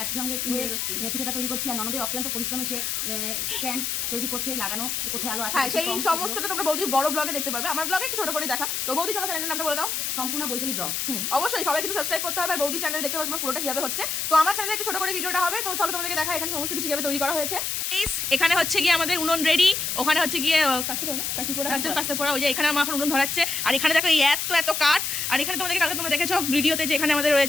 একসঙ্গে পিঠেটা তৈরি করছি। আর ননদের অক্লান্ত পরিশ্রমে সে স্ট্যান্ড তৈরি করছে, লাগানো কোথায় আলো আছে। হ্যাঁ, সেই সমস্তটা তোমরা বৌদির বড় ব্লগে দেখতে পাবে। আমার ব্লগে একটু ছোট করে দেখা। তো বৌদি তোমার চ্যানেলের নামটা বলে দাও। সম্পূর্ণ বৈশালী ব্লগ। অবশ্যই সবাই কিন্তু সাবস্ক্রাইব করতে হবে আর বৌদি চ্যানেলে দেখতে পাবে পুরোটা কিভাবে হচ্ছে। তো আমার চ্যানেলে একটু ছোট করে ভিডিওটা হবে। তো চলো তোমাদেরকে দেখা এখানে সমস্ত কিছু কিভাবে তৈরি করা হয়েছে। এখানে হচ্ছে গিয়ে আমাদের উনুন রেডি, ওখানে হচ্ছে গিয়ে কাস্তে পড়া ওই যে এখানে আমার এখন উনুন ধরাচ্ছে। আর এখানে দেখো এই এত কাঠ। আর এখানে তোমাদেরকে কালকে তোমরা দেখেছো ভিডিওতে যে এখানে আমাদের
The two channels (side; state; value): left; noise; hiss, 1 dB below the sound